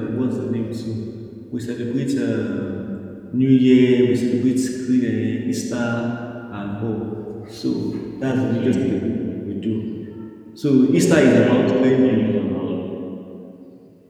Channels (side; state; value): both; identical; correlation 1.00